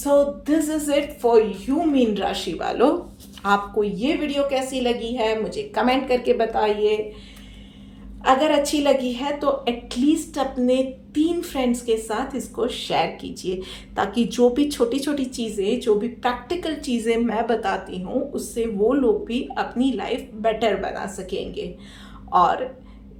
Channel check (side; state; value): both; identical; correlation 1.00